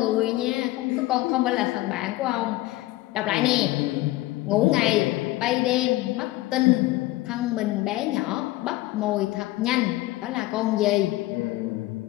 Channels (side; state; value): right; quieter; 17.8 dB